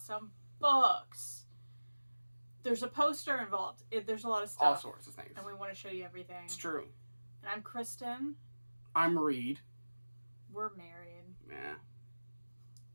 some books. There's a poster involved. There's a lot of stuff. All sorts of things. And we want to show you everything. It's true. And I'm Kristan. I'm Reed. We're married.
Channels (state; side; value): inverted; both; correlation -1.00